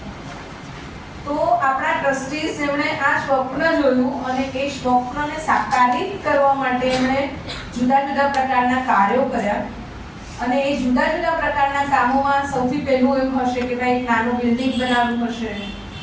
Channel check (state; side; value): identical; both; correlation 1.00